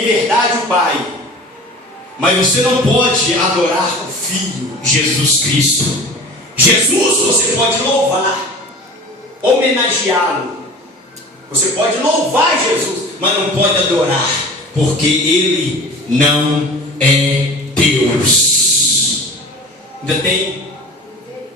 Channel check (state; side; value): normal; both; correlation 0.39